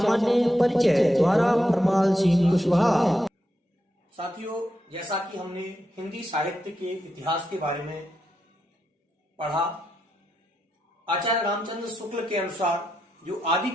परिचय द्वारा परमाल सिंह कुशवाहा। साथियों, जैसा कि हमने हिंदी साहित्य के इतिहास के बारे में पढ़ा, आचार्य रामचंद्र शुक्ल के अनुसार जो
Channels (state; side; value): normal; both; correlation 0.85